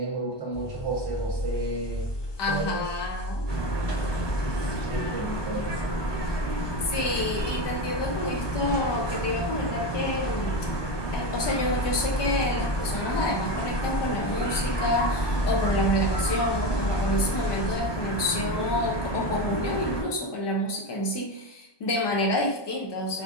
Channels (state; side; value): late; right; 1.2 ms